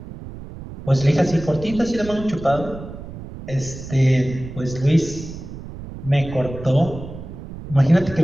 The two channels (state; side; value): noise; right; rumble, 12 dB below the sound